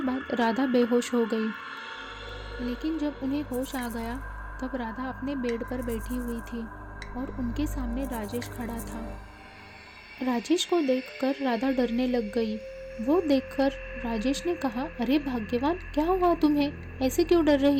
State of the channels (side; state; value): both; identical; correlation 1.00